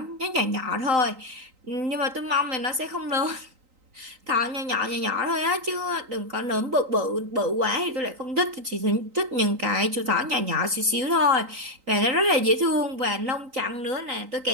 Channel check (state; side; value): late; left; 3.9 ms